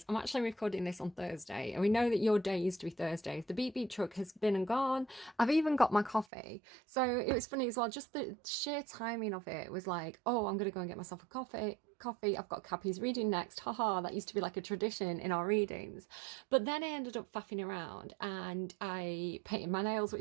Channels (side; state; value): left; drops out; at 6.2 s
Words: I'm actually recording this on Thursday and we know that your day used to be Thursdays. The beep beep truck has been and gone. I've even got my coffee. So it was funny as well, just the sheer timing of it was like, oh, I'm gonna go and get myself a coffee. I've got Cappy's reading next. Haha, that used to be like a tradition in our readings. But then I ended up faffing around and I painted my nails,